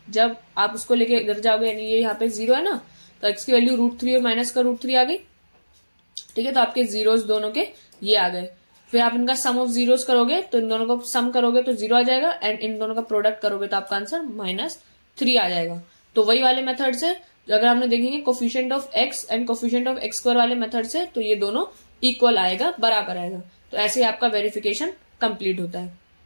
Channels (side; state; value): both; inverted; correlation -1.00